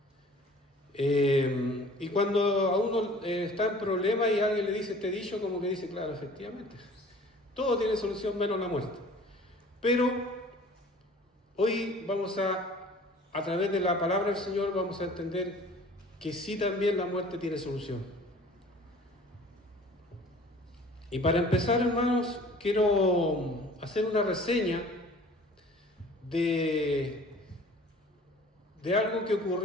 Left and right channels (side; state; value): both; normal; correlation 0.48